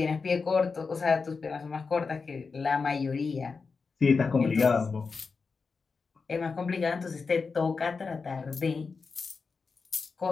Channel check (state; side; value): quieter; right; 4.8 dB